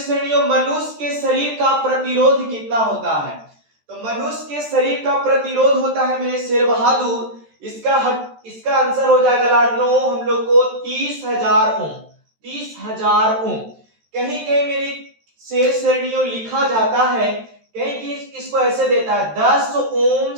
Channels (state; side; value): late; left; 13 ms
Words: श्रेणियों, मनुष्य के शरीर का प्रतिरोध कितना होता है? तो मनुष्य के शरीर का प्रतिरोध होता है मेरे शेर बहादुर, इसका आंसर हो जाएगा लाडलो हम लोग को 30,000 ओम। 30,000 ओम। कहीं कहीं मेरी शेर श्रेणियों लिखा जाता है, कहीं कि इसको ऐसे देता है 10 ओम